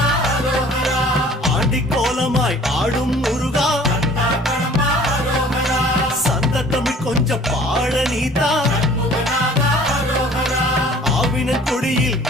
ஆண்டி கோலமாய் ஆடும் முருகா, சந்த தமிழ் கொஞ்சம் பாட நீதா, ஆவினன் கொடியில்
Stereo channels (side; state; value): both; normal; correlation 0.51